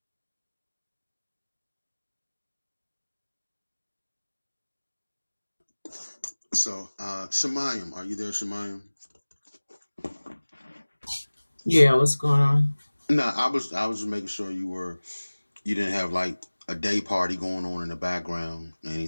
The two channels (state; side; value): inverted; both; correlation -1.00